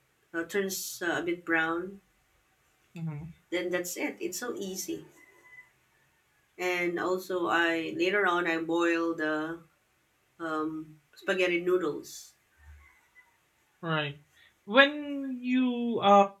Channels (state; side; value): identical; both; correlation 1.00